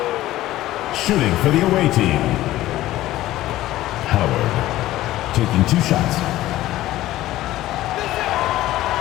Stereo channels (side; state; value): right; quieter; 15.3 dB